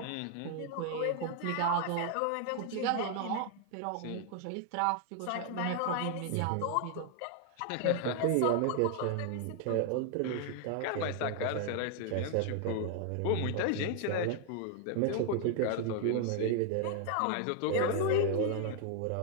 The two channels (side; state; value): both; different; correlation 0.00